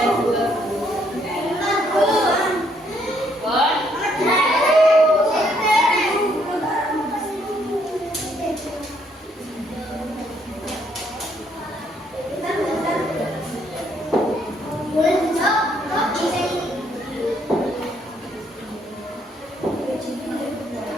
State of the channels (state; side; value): normal; both; correlation 0.70